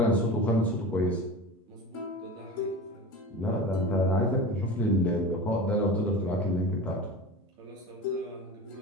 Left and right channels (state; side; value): normal; both; correlation 0.32